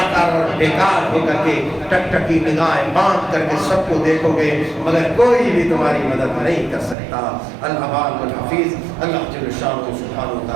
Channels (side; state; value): left; drops out; at 7.0 s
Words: اور بیکار ہو کر کے ٹک ٹکی نگاہیں باندھ کر کے سب کو دیکھو گے، مگر کوئی بھی تمہاری مدد نہیں کر سکتا۔ الحبال والحفیظ، اللہ جل شانہ سبحانہ